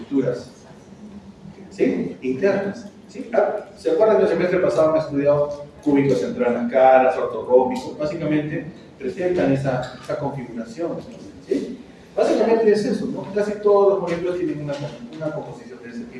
¿sí? Internas. ¿Sí? ¿Se acuerdan que el semestre pasado han estudiado cúbicos entre las caras, ortorrómbicos? Básicamente presentan esa configuración. ¿Sí? Básicamente es eso, ¿no? Casi todos los moléculas tienen una composición de ese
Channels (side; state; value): both; identical; correlation 1.00